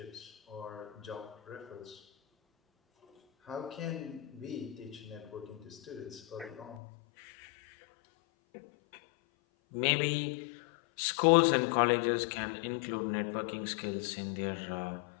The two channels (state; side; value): drops out; right; at 6.8 s